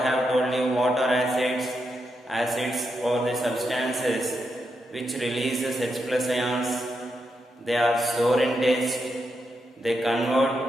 have told you, what are acids? Acids are the substances which releases H plus ions. They are sour in taste. They convert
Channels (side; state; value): both; normal; correlation 0.84